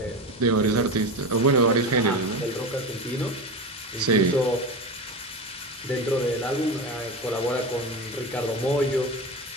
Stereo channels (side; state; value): both; normal; correlation 0.23